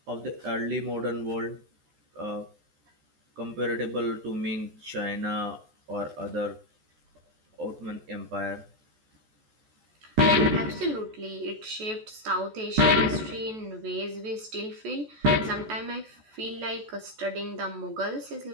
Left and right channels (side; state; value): left; late; 14 ms